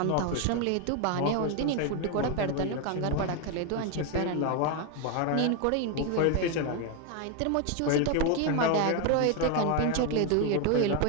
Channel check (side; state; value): both; different; correlation 0.01